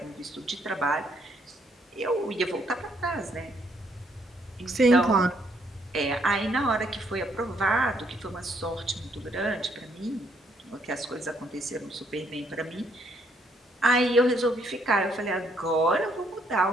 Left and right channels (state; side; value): normal; both; correlation 0.70